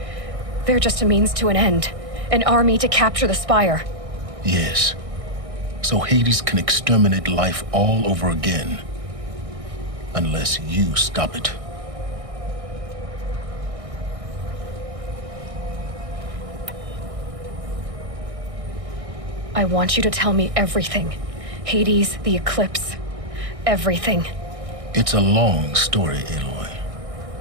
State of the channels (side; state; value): left; late; 1.6 ms